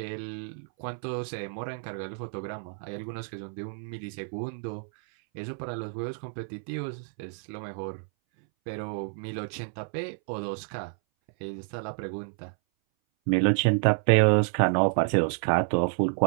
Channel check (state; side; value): silent; left; 58 dB below the other